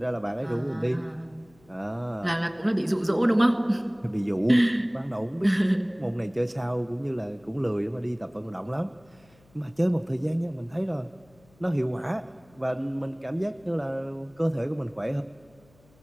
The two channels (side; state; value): left; noise; hum, 30 dB below the sound